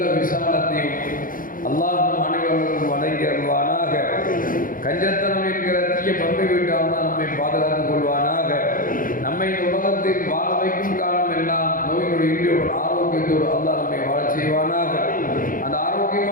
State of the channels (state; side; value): late; right; 0.40 ms